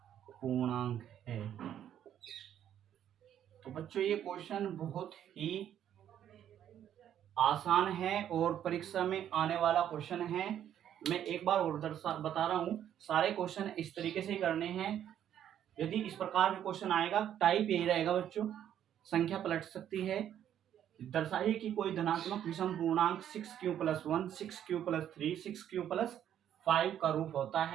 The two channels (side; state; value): left; quieter; 10.3 dB